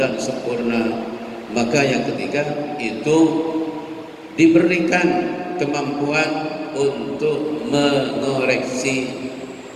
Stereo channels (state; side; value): identical; both; correlation 1.00